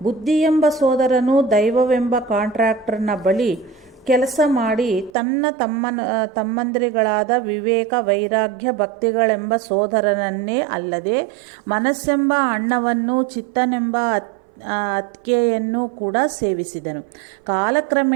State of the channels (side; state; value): left; drops out; at 5.1 s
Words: ಬುದ್ಧಿ ಎಂಬ ಸೋದರನು ದೈವವೆಂಬ ಕಾಂಟ್ರಾಕ್ಟರ್ನ ಬಳಿ ಕೆಲಸ ಮಾಡಿ ತಮ್ಮಂದಿರುಗಳಾದ ವಿವೇಕ, ವೈರಾಗ್ಯ, ಭಕ್ತಿಗಳೆಂಬ ಸೋದರನನ್ನೇ ಅಲ್ಲದೆ ಮನಸ್ಸೆಂಬ ಅಣ್ಣವನ್ನು, ಚಿತ್ತನೆಂಬ ಅತ್ತಿಗೆಯನ್ನು ಕೂಡ ಸೇವಿಸಿದನು.